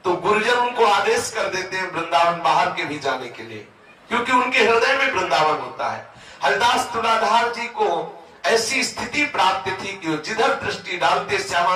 तो गुरुजन उनको आदेश कर देते हैं वृंदावन बाहर के भी जाने के लिए, क्योंकि उनके हृदय में वृंदावन होता है। हरिदास तुलाधार जी को ऐसी स्थिति प्राप्त थी कि जिधर दृष्टि डालते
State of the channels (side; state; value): both; identical; correlation 1.00